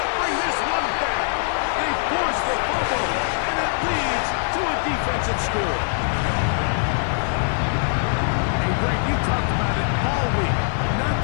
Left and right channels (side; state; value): right; silent; 64 dB below the other